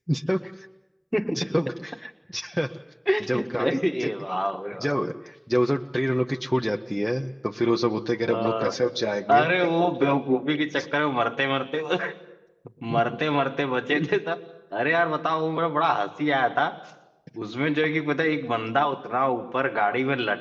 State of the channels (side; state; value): both; identical; correlation 1.00